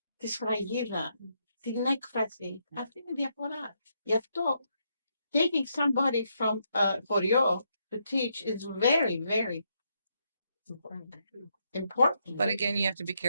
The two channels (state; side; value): inverted; both; correlation -0.78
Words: τη σφραγίδα, την έκφραση. Αυτή είναι η διαφορά. Γι' αυτό taking somebody from χωριό to teach is very, very important. But again, you have to be